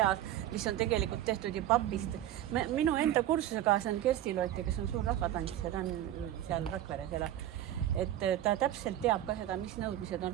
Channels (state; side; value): quieter; left; 12.5 dB